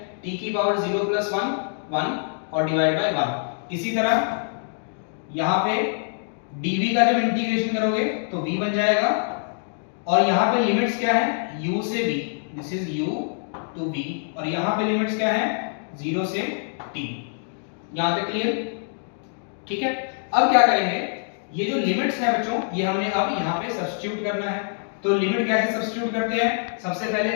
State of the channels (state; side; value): silent; right; 62 dB below the other